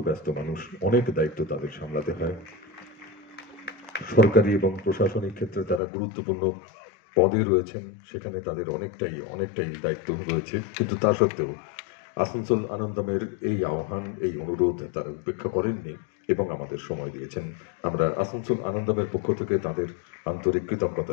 ব্যস্ত মানুষ, অনেক দায়িত্ব তাদের সামলাতে হয়। সরকারি এবং প্রশাসনিক ক্ষেত্রে তারা গুরুত্বপূর্ণ পদে রয়েছেন, সেখানে তাদের অনেকটাই দায়িত্ব রয়েছে। কিন্তু তা সত্ত্বেও আসানসোল আনন্দমের এই আহ্বান, এই অনুরোধ তারা উপেক্ষা করেননি এবং আমাদের সময় দিয়েছেন। আমরা আসানসোল আনন্দমের পক্ষ থেকে তাদের আন্তরিক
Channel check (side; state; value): right; drops out; at 5.8 s